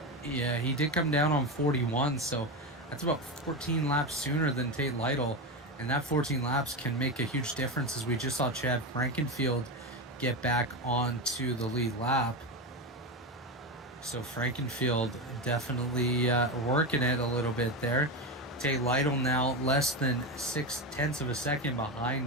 Yeah, he did come down on 41, so that's about 14 laps sooner than Tate Lytle, and that 14 laps can make a huge difference, as we just saw Chad Frankenfield get back onto the lead lap. So Frankenfield definitely working it a little bit there. Tate Lytle now less than 0.6 of a second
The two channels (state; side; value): normal; both; correlation 0.16